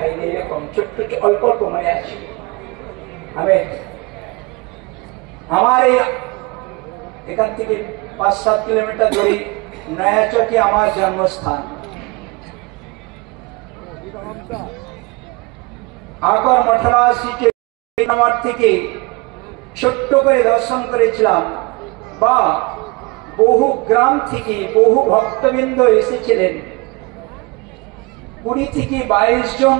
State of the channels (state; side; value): quieter; left; 26.2 dB